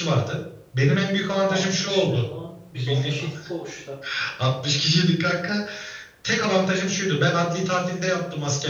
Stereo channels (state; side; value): identical; both; correlation 1.00